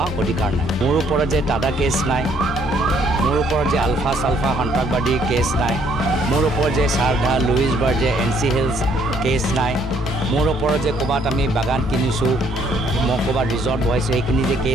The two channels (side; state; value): both; normal; correlation 0.65